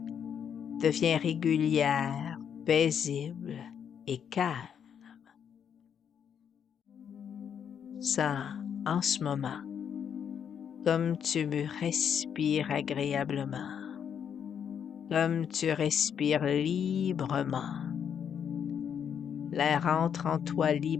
devient régulière, paisible et calme. Sens en ce moment comme tu respires agréablement, comme tu respires librement. L'air entre en toi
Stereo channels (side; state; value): right; quieter; 8.0 dB